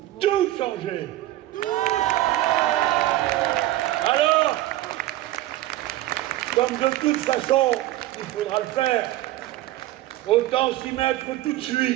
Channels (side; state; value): left; quieter; 15.6 dB